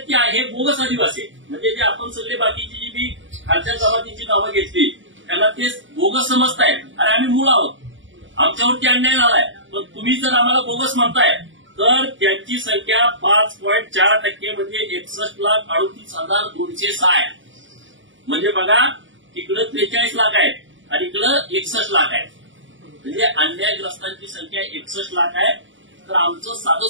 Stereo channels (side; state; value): left; late; 0.56 ms